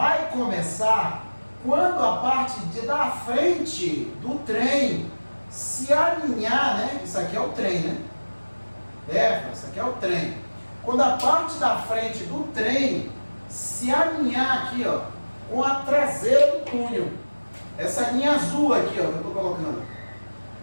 começar quando a parte da frente do trem se alinhar, né? Isso aqui é o trem, né? Isso aqui é o trem. Quando a parte da frente do trem se alinhar aqui, ó, com a traseira do túnel. Essa linha azul aqui, ó, que eu estou colocando.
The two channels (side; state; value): both; inverted; correlation -1.00